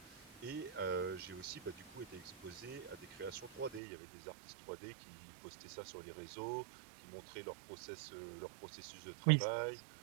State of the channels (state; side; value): drops out; left; at 3.8 s